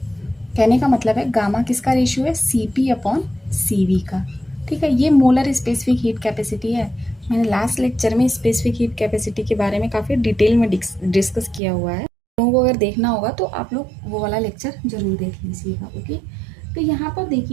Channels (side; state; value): left; drops out; at 11.6 s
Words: कहने का मतलब है गामा किसका रेशियो है, Cp अपॉन Cv का। ठीक है, ये मोलर स्पेसिफिक हीट कैपेसिटी है। मैंने लास्ट लेक्चर में स्पेसिफिक हीट कैपेसिटी के बारे में काफ़ी डिटेल में डिस्कस किया हुआ है। लोगों को अगर देखना होगा तो आप लोग वो वाला लेक्चर जरूर देख लीजिएगा। ओके, तो यहाँ पर